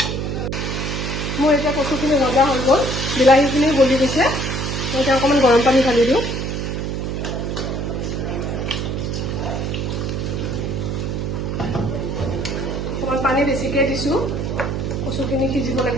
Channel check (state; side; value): noise; right; hum, 2 dB below the sound